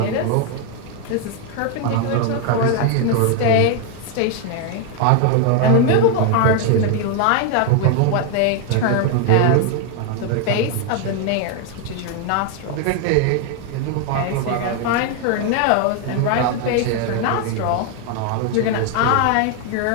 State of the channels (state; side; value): different; both; correlation 0.01